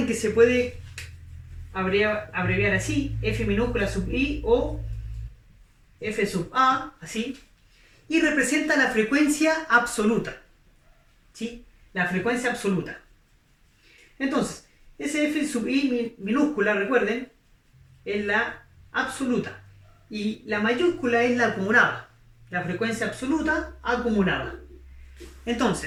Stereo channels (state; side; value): identical; both; correlation 1.00